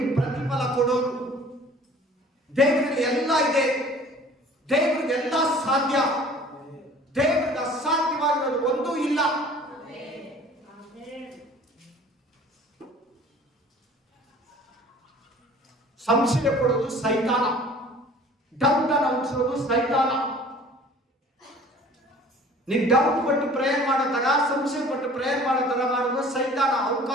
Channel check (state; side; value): normal; both; correlation 0.48